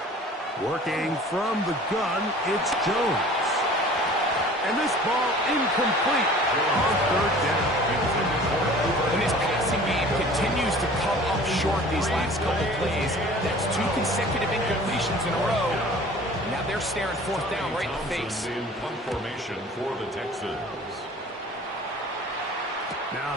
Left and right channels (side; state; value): both; normal; correlation 0.46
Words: Working from the gun, it's Jones. And this ball incomplete on third down. And this passing game continues to come up short these last couple plays. That's 2 consecutive incompletions in a row. Now they're staring fourth down right in the face. In punt formation for the Texans. Now